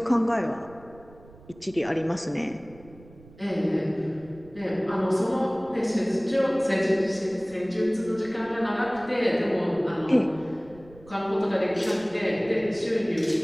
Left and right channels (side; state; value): right; noise; rumble, 22 dB below the sound